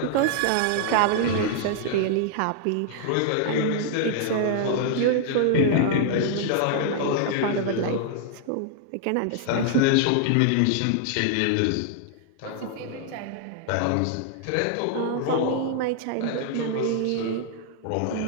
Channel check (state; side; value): different; both; correlation -0.01